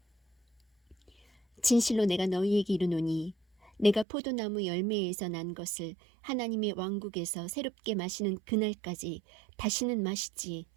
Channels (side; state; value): left; drops out; at 4.0 s